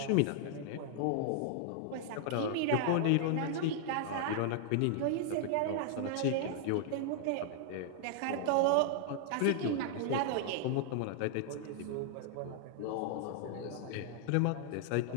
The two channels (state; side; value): different; both; correlation 0.00